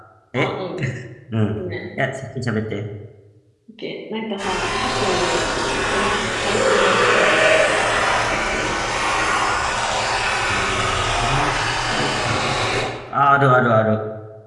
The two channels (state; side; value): identical; both; correlation 1.00